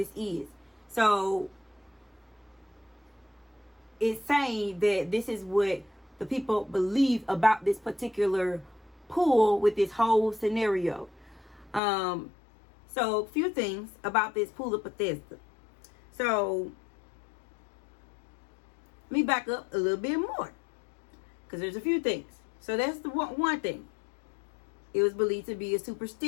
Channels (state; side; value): drops out; right; at 11.8 s